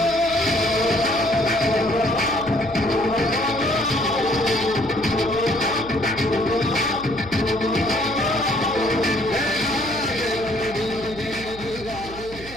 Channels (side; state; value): right; noise; hum, 16 dB below the sound